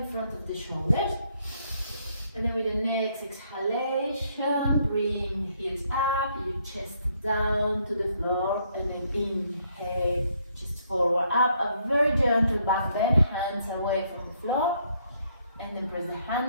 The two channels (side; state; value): both; inverted; correlation -0.70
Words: front of the shoulders. And then with the next exhalation, bring the heels up, your chest down to the floor, and then inhale, chest forward up, a very gentle back bend, hands away from the floor, and then press the